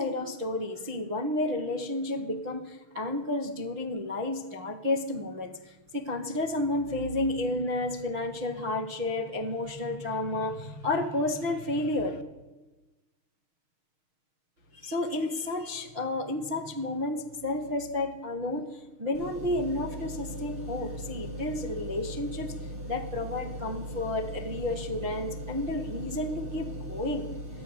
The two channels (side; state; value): left; late; 6.4 ms